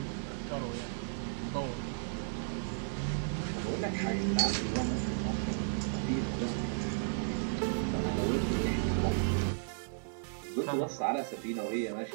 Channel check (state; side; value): silent; left; digital silence